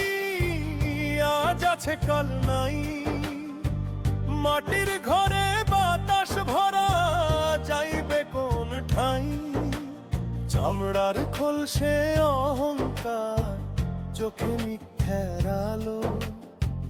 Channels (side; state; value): both; identical; correlation 1.00